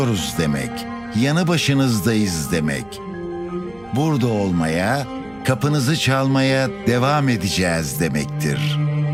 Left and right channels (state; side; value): noise; right; hum, 26 dB below the sound